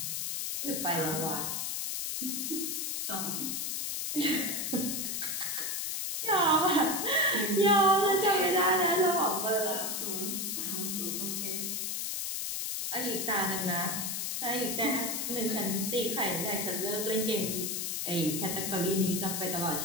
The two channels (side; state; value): left; noise; hiss, 1 dB below the sound